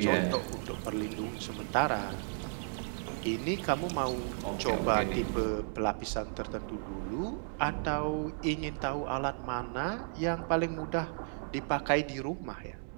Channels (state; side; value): silent; left; 55 dB below the other